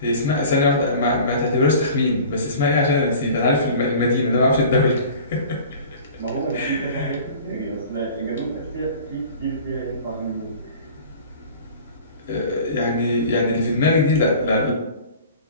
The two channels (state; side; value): inverted; both; correlation -0.43